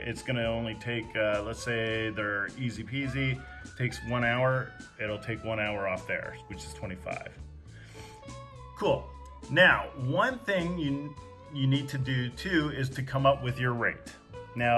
gonna only take, let's say they're easy peasy, takes 1 hour, it'll take 1 hour off there, which is 25. Cool. Now, one thing you need to do too is to come up with your rate.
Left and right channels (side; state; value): both; identical; correlation 1.00